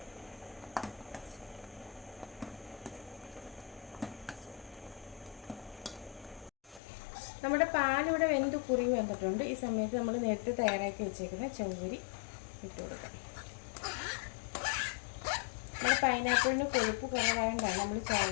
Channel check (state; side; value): drops out; right; at 6.8 s